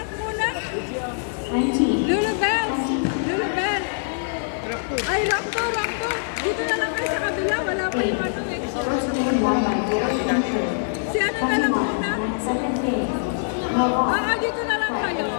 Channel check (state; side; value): silent; right; 63 dB below the other